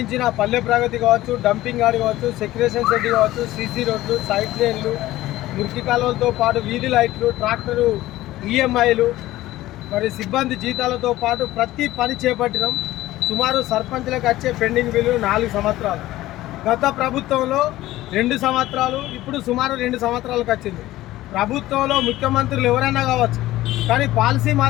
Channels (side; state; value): right; quieter; 16.1 dB